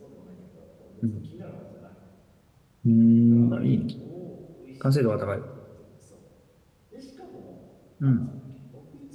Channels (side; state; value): both; identical; correlation 1.00